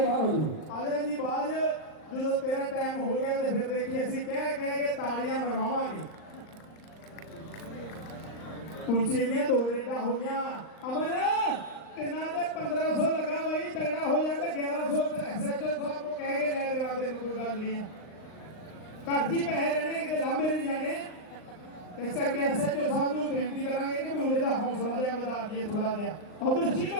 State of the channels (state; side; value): late; right; 39 ms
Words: ਹੋ ਜੂ। ਆਜਾ ਜੀ ਬਾਅਦ ਜਦੋਂ ਤੇਰਾ ਟਾਈਮ ਹੋ ਗਿਆ ਤੇ ਫਿਰ ਦੇਖੀ ਅਸੀਂ ਕਹਿ ਕੇ ਤਾੜੀਆਂ ਮਰਵਾਵਾਂਗੇ। ਕੁਰਸੀ ਦੀਆਂ 2 ਰੇਡਾਂ ਹੋ ਗਿਆ ਅਮਰ ਤਿੰਨਾਂ ਤੇ 1500 ਲੱਗਾ ਬਈ ਤਗੜਾ ਹੋ ਜਾਂਦਾ 1100 ਐਸਐਚਓ ਸਾਹਿਬ ਨੂੰ ਕਹਿ ਕੇ ਲੈ ਦੇਵਾ ਦੇ ਕੋਈ ਗੱਲ ਨਹੀਂ ਘਰ ਜੀ ਪੈਸੇ ਰਹਿਣੇ ਕਿਤੇ ਲਾਂਬੇ ਨਹੀਂ ਜਾਣੇ। ਇਸ ਕਰਕੇ ਐਸਐਚਓ ਸਾਹਿਬ ਨੂੰ ਬੇਨਤੀ ਕਰਾਂਗੇ ਕਿ ਮੁੰਡੇ ਦਾ ਹੌਸਲਾ ਜਿਹਾ ਵਧਾ ਦਈਏ ਥੋੜਾ ਜਿਹਾ। ਉਧਰ